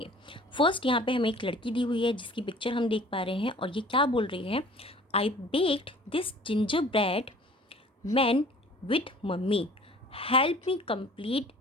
फर्स्ट यहाँ पे हमें एक लड़की दी हुई है जिसकी पिक्चर हम देख पा रहे हैं और ये क्या बोल रही है, I baked this gingerbread man with mummy, help me complete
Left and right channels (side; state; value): both; normal; correlation 0.49